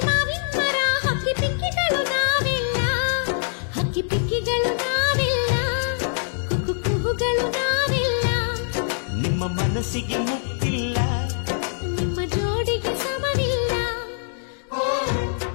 ಮಾವಿನ ಮರ, ಹಕ್ಕಿ ಪಿಕ್ಕಿಗಳು ನಾವೆಲ್ಲ, ಹಕ್ಕಿ ಪಿಕ್ಕಿಗಳು ನಾವೆಲ್ಲ, ಕುಹು ಕುಹುಗಳು ನಾವೆಲ್ಲ. ನಿಮ್ಮ ಮನಸ್ಸಿಗೆ ಮುಟ್ಟಿಲ್ಲ, ನಿಮ್ಮ ಜೋಡಿಗೆ ಸಮವಿಲ್ಲ.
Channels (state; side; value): silent; right; digital silence